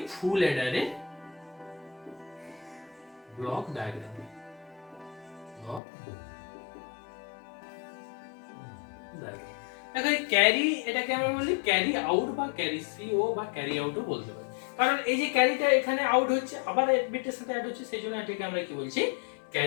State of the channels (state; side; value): drops out; right; at 5.8 s